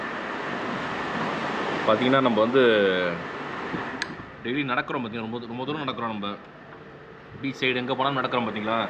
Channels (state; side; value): identical; both; correlation 1.00